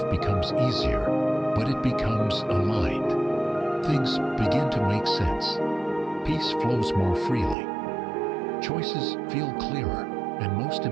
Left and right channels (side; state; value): left; drops out; at 7.6 s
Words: becomes easier, but it becomes aligned. Things begin to make sense. Peace flows more freely. Choices feel clearer, and most